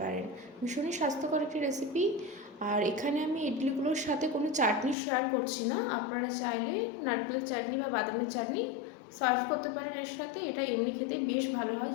পারেন। ভীষণই স্বাস্থ্যকর একটি রেসিপি। আর এখানে আমি ইডলিগুলোর সাথে কোনো চাটনি শেয়ার করছি না, আপনারা চাইলে নারকেলের চাটনি বা বাদামের চাটনি সার্ভ করতে পারেন এর সাথে। এটা এমনি খেতেই বেশ ভালো হয়,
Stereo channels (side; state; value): right; drops out; at 5.0 s